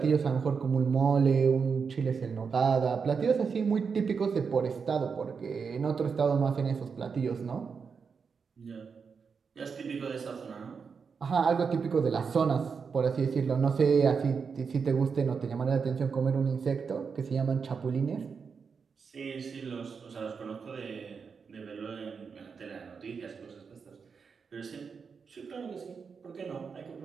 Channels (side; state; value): left; quieter; 5.7 dB